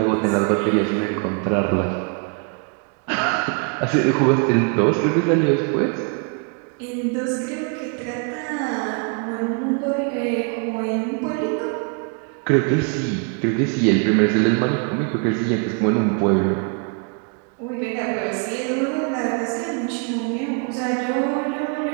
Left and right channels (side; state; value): left; quieter; 38.0 dB